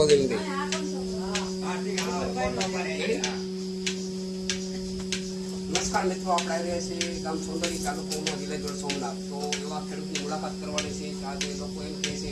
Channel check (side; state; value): both; identical; correlation 1.00